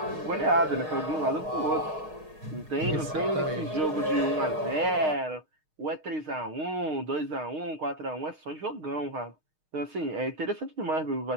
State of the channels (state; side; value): late; left; 6.5 ms